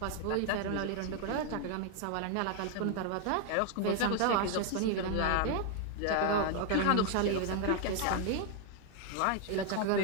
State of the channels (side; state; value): both; different; correlation 0.00